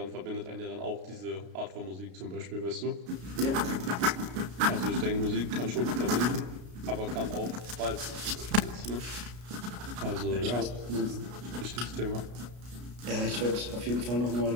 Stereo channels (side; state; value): left; late; 33 ms